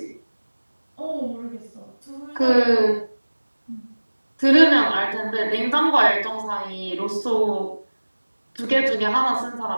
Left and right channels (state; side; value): inverted; both; correlation -1.00